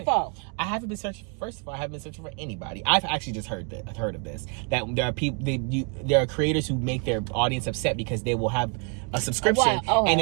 for? I haven't been searching. First of all, I haven't been searching for anybody. I've actually just heard of this. That there are people. There are creators who make their audience upset because they will have a subscription and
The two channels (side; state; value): left; quieter; 37.4 dB